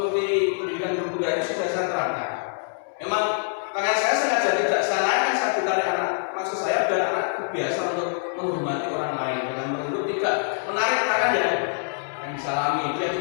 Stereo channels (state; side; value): silent; right; 62 dB below the other